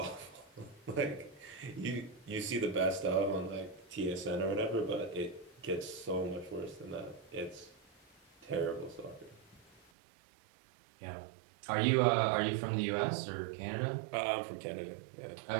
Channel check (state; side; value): drops out; left; at 9.8 s